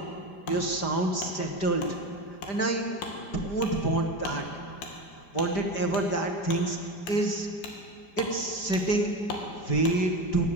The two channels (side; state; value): right; late; 5.0 ms